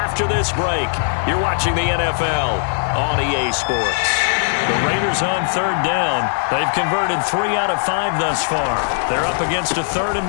this break. You're watching the NFL on EA Sports. The Raiders on third down. They've converted 3 out of 5 thus far. They're up against a 3rd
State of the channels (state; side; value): silent; right; 61 dB below the other